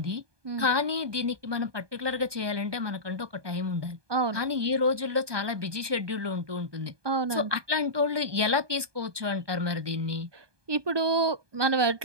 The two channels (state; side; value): late; left; 1.2 ms